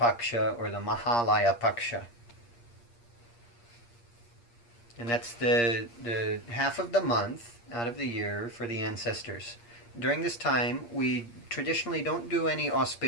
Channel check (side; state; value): right; late; 8.5 ms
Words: or the Mahalaya Paksha. And that's the half of the month out of the year for the ancestors. During this time, we traditionally don't do any